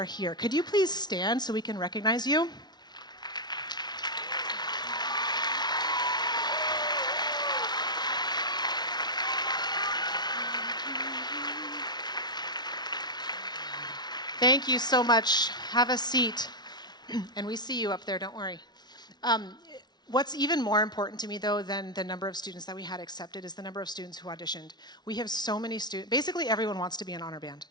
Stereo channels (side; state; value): right; late; 0.20 ms